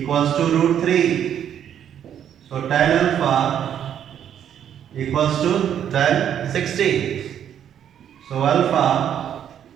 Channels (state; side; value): quieter; left; 9.5 dB